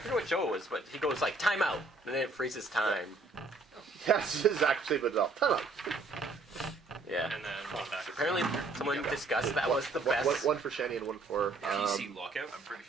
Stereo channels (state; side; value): quieter; left; 3.5 dB